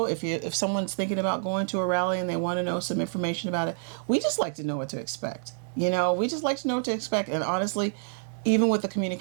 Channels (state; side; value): silent; left; digital silence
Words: if someone's thinking about going to a rally and they want to know some information about it. We just like to know what to expect. You know, we just like to know what to expect. And honestly, even with the